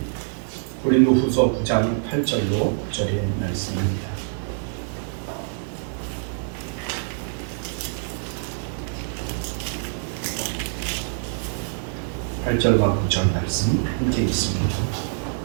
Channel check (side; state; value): left; silent; digital silence